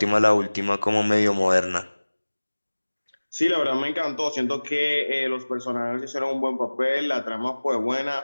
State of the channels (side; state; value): both; inverted; correlation -1.00